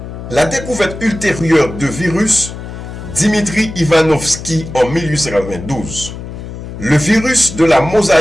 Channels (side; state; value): left; noise; hum, 10 dB below the sound